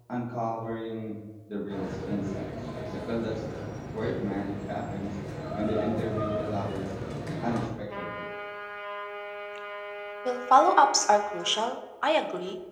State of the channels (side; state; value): both; identical; correlation 1.00